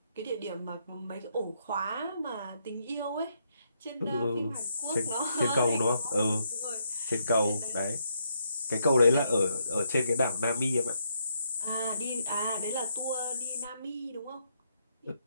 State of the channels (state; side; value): inverted; both; correlation -0.77